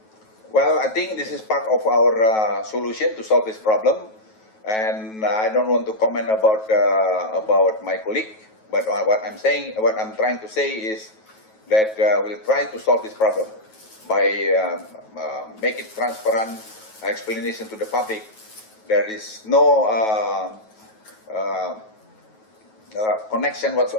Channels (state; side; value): late; right; 9.3 ms